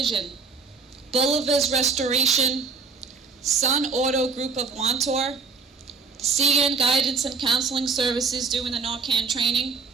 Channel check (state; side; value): quieter; left; 4.7 dB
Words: Bolivar's Restoration, Sun Auto Group of Wantor, CN Guidance and Counseling Services doing the Narcan training,